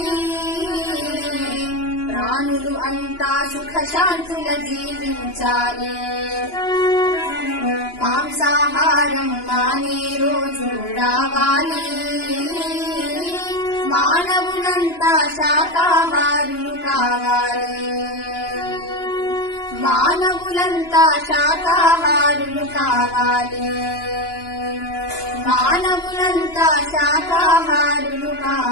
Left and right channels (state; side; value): late; right; 2.9 ms